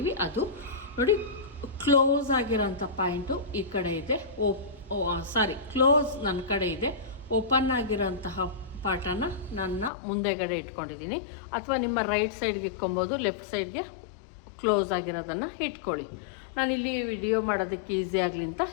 ಅದು ನೋಡಿ ಕ್ಲೋಸ್ ಆಗಿರೋಂಥ ಪಾಯಿಂಟು ಈ ಕಡೆ ಇದೆ. ಕ್ಲೋಸ್ ನನ್ನ ಕಡೆ ಇದೆ. ಓಪನ್ ಆಗಿರೋಂತಹ ಪಾರ್ಟನ್ನು ನನ್ನ ಮುಂದೆಗಡೆ ಇಟ್ಕೊಂಡಿದ್ದೀನಿ. ಅಥವಾ ನಿಮ್ಮ ರೈಟ್ ಸೈಡ್ಗೆ ಇಟ್ಕೊಬೋದು, ಲೆಫ್ಟ್ ಸೈಡ್ಗೆ ಕ್ಲೋಸ್ ಆಗಿರೋದನ್ನು ಇಟ್ಕೊಳ್ಳಿ. ನಾನಿಲ್ಲಿ ವಿಡಿಯೋ ಮಾಡೋದಕ್ಕೆ ಈಸಿ ಆಗಲಿ ಅಂತ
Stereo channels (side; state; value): right; drops out; at 9.9 s